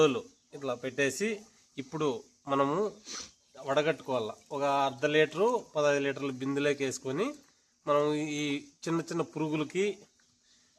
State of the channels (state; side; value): identical; both; correlation 1.00